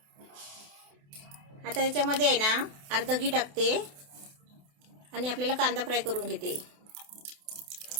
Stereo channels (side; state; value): left; late; 28 ms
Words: आता त्याच्यामध्ये आहे ना अर्ध घी टाकते आणि आपल्याला कांदा फ्राय करून घेते.